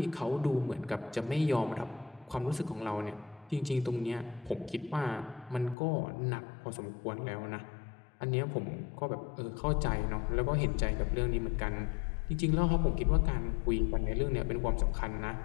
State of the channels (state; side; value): drops out; right; at 5.8 s